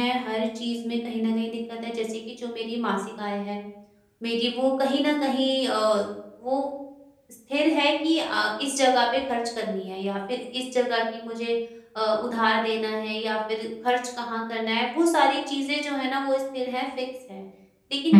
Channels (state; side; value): identical; both; correlation 1.00